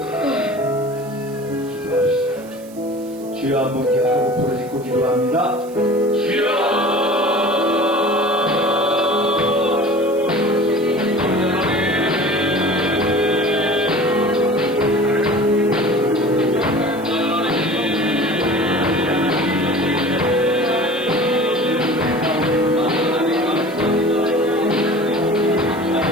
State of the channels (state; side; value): noise; right; hiss, 23 dB below the sound